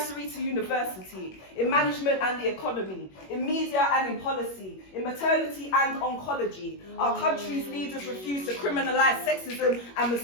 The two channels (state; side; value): late; right; 21 ms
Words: to university, in management and the economy, in media and in policy, in maternity and oncology. Our country's leaders refuse to criminalize sexism and